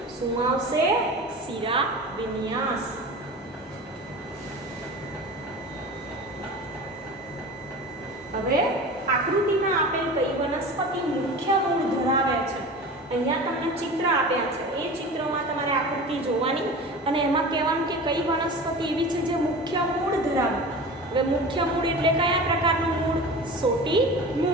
શું આવશે? શિરાવિન્યાસ. હવે આકૃતિમાં આપેલ કઈ વનસ્પતિ મુખ્ય મૂળ ધરાવે છે? અહીંયા તમને ચિત્ર આપ્યા છે, એ ચિત્રમાં તમારે આકૃતિ જોવાની અને એમાં કહેવાનું કે કઈ વનસ્પતિ એવી છે જે મુખ્ય મૂળ ધરાવે. હવે મુખ્ય મૂળ એટલે કયા પ્રકારનું મૂળ? સોટી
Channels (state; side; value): normal; both; correlation 0.34